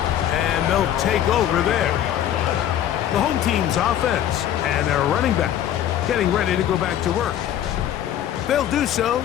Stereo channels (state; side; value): quieter; right; 11.0 dB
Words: they'll take over there. The home team's offense and their running back getting ready to go back to work. They'll do so